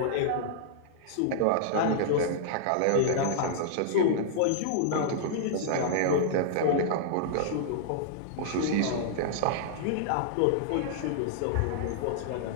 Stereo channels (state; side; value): different; both; correlation -0.02